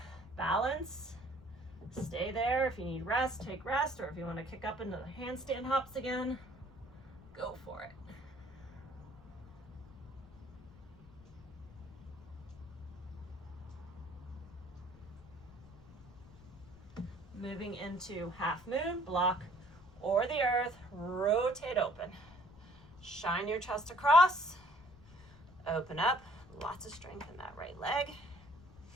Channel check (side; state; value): left; noise; rumble, 21 dB below the sound